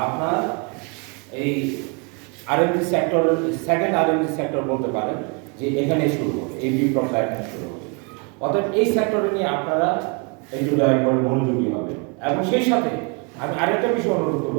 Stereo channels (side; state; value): left; quieter; 33.7 dB